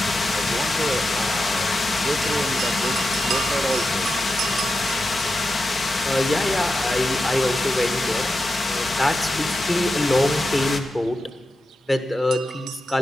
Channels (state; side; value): normal; both; correlation 0.90